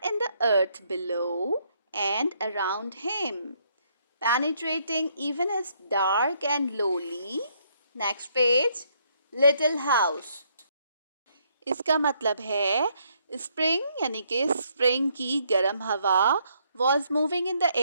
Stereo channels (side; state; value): both; inverted; correlation -0.71